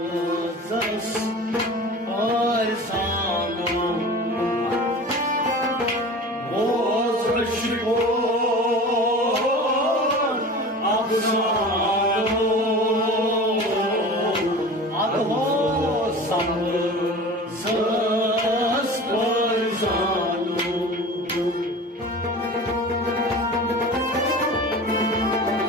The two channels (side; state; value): both; normal; correlation 0.36